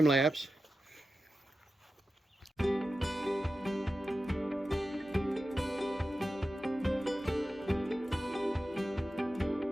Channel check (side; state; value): both; normal; correlation 0.92